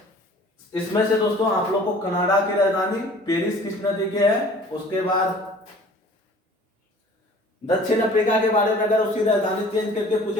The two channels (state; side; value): normal; both; correlation 0.48